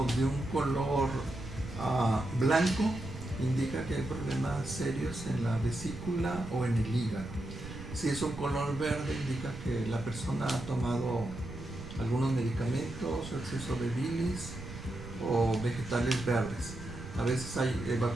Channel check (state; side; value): noise; right; rumble, 11 dB below the sound